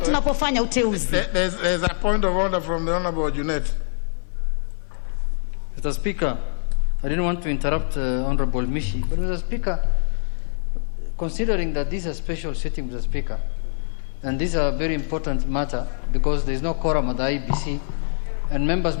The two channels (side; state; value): right; silent; digital silence